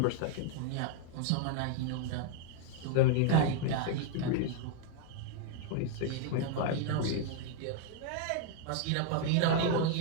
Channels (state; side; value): different; both; correlation 0.00